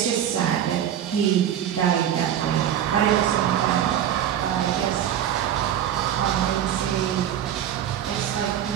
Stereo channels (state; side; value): quieter; left; 10.3 dB